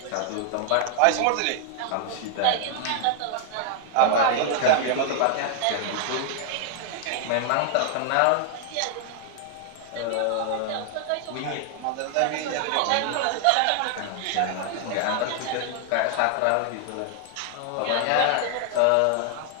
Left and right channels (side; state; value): both; different; correlation 0.00